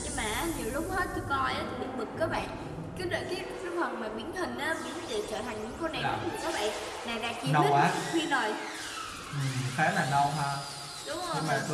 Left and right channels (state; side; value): identical; both; correlation 1.00